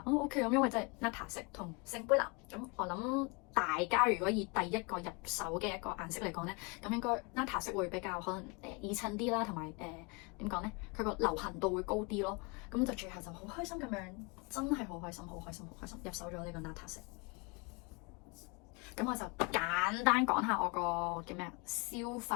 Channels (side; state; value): right; quieter; 29.6 dB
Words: OK 咁，因為真係 Nata 色同聖杯藍，咁我諗大家如果以第一個入手嘅一個顏色嚟講咧，咁應該 Nata 色會比較可能易襯啲啦，同埋點講咧，佢個流行度會高啲咯。咁就最後就好開心咁樣，真係好開心入手咗呢個 Nata 色。咁我就簡單講下我個叫咩消